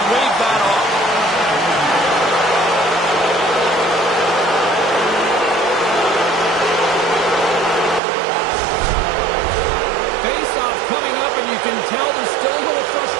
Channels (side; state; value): left; drops out; at 8.0 s